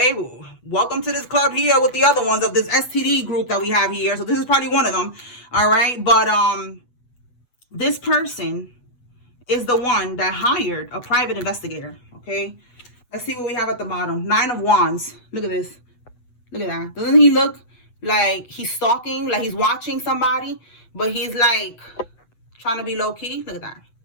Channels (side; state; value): right; late; 8.1 ms